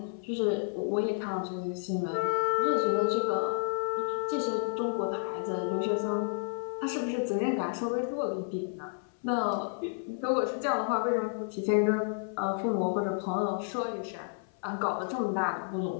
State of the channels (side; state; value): right; silent; 57 dB below the other